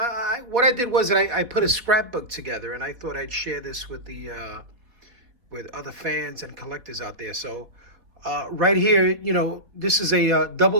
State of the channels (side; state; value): left; late; 4.2 ms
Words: I did was I put a scrapbook together, and I thought I'd share this with other fans and collectors out there. So right here, this is a